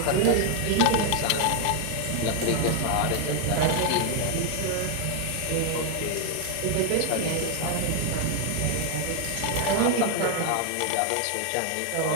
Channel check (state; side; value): different; both; correlation 0.00